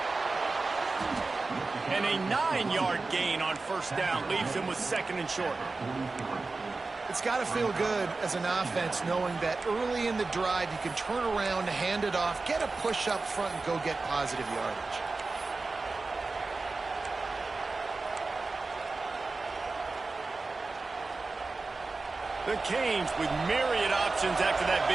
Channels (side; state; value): left; quieter; 3.7 dB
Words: And a 9-yard gain on 1st down leaves them with 2nd and short. It's got to feel good as an offense knowing that early in the drive you can turn around, hand it off, get a push up front, and go get positive yardage. The Canes with myriad options after that